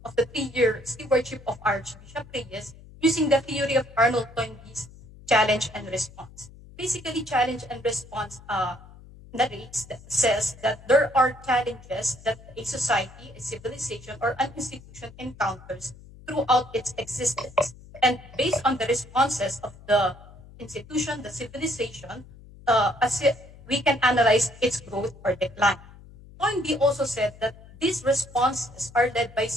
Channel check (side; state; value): left; noise; hum, 20 dB below the sound